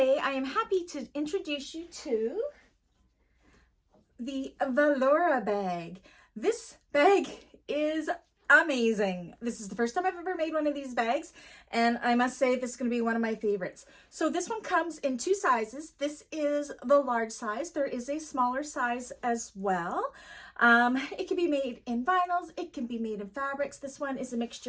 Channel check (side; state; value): both; identical; correlation 1.00